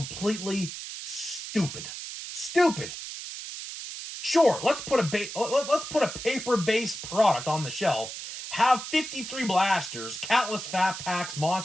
stupid. Stupid. Sure, let's put a paper-based product on the shelf, have 53 blasters, countless fat packs,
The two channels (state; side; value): noise; right; hiss, 8 dB below the sound